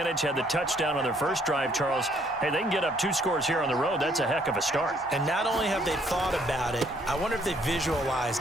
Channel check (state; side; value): normal; both; correlation 0.65